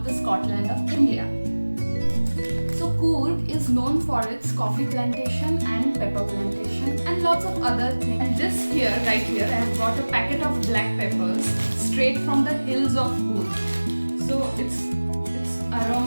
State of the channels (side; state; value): both; inverted; correlation -1.00